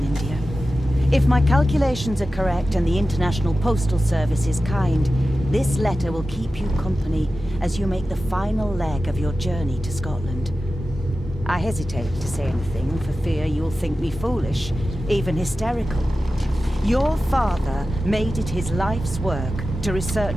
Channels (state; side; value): normal; both; correlation 0.94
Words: India. If my calculations are correct and the International Postal Service is kind, this letter will keep you company as you make the final leg of your journey to Scotland. I hesitate to say anything for fear you'll think me foolish, even hysterical. Your father made it his life's work to